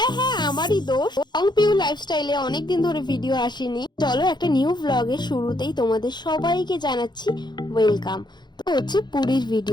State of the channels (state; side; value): late; right; 0.21 ms